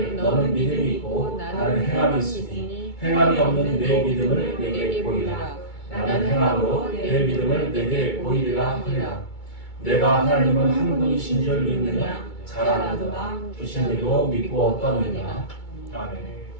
너는 믿음이 있고 나는 행함이 있으니 행함이 없는 내 믿음을 내게 보이라. 나는 행함으로 내 믿음을 내게 보이리라 하리라. 내가 하나님은 한 분이신 줄 믿느냐? 잘 아나도다. 주신 이도 믿고 어떠느냐? 아멘.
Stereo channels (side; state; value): right; late; 2.2 ms